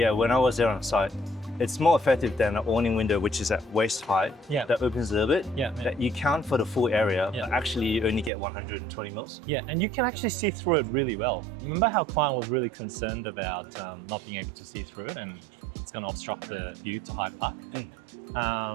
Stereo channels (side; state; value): left; drops out; at 8.3 s